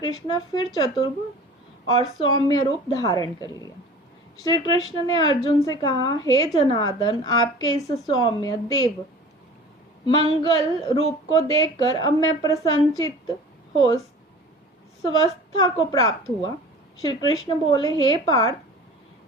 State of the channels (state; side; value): normal; both; correlation 0.41